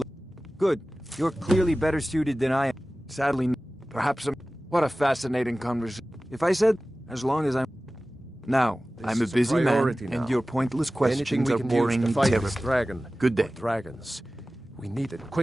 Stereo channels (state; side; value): normal; both; correlation 0.97